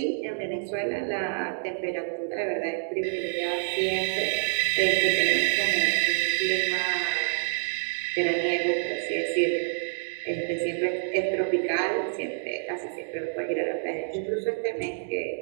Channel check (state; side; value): silent; left; digital silence